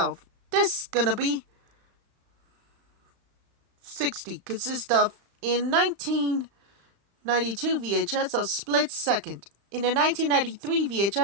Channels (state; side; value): late; left; 36 ms